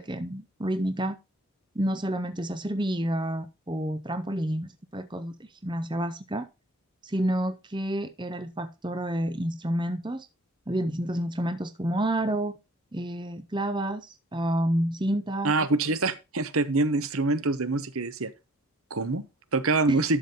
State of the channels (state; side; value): normal; both; correlation 0.55